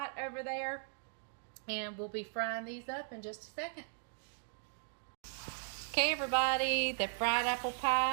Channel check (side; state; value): left; silent; digital silence